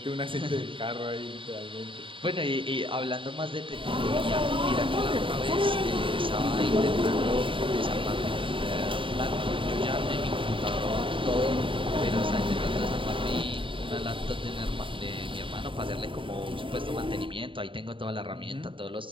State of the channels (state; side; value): late; left; 0.25 ms